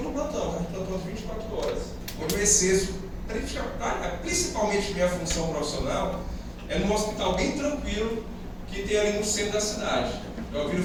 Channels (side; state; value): both; identical; correlation 1.00